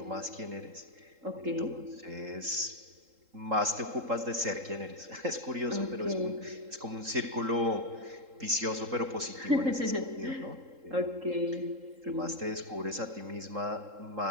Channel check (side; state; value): left; late; 3.8 ms